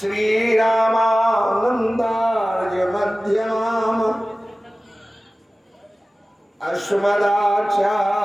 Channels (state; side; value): normal; both; correlation 0.97